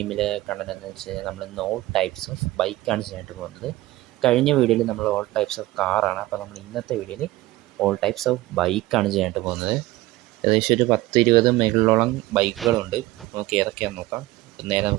കണ്ടതെന്ന് വെച്ച് കഴിഞ്ഞാൽ നമ്മൾ ഇന്ന് ഓൾ ടൈപ്സ് ഓഫ് ബൈക്കാണ് ചെയ്യാനായിട്ട് പോകുന്നത്. കഴിഞ്ഞ വീഡിയോയിൽ നമ്മൾ ഓൾ ടൈപ്സ് ഓഫ് കാറാണ്. അപ്പോൾ നമ്മൾ ഇന്നത്തെ വീഡിയോയിൽ ഓൾ ടൈപ്സ് ഓഫ് ബൈക്കാണ് ചെയ്യാനായിട്ട് പോകുന്നത്. ഏകദേശം ഒരു 10-20 മേളിലോളം ബൈക്കുകളുണ്ട്. നമുക്ക് ഏതൊക്കെയാണെന്ന് നോക്കാം. നേരെ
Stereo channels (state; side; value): quieter; left; 17.8 dB